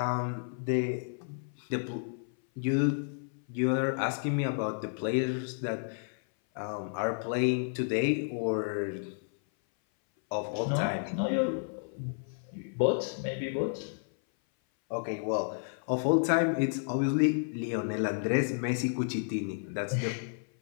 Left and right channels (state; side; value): silent; right; 57 dB below the other